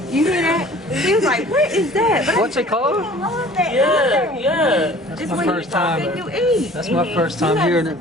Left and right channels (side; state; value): both; normal; correlation 0.48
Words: You hear that? He was like, what is that? But What's it called? I love that. Yeah, yeah. That's It's my when you first talk time. and you eat. That's my first time hearing it.